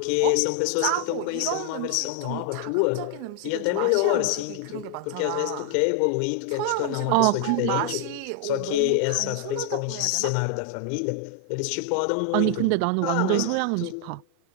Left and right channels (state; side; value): different; both; correlation 0.00